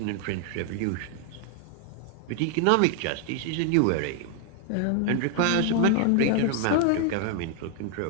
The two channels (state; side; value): different; both; correlation 0.00